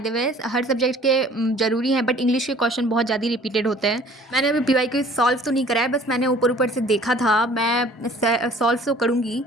way her subject के ज़रूरी हैं, बट इंग्लिश के क्वेश्चन बहुत ज़्यादा रिपीटेड होते हैं। मैंने अभी पीवाईक्यू सॉल्व तो नहीं करा है, बस मैंने ऊपर ऊपर से देखा था। मैं सॉल्व तो करूँगी,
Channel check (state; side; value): normal; both; correlation 0.51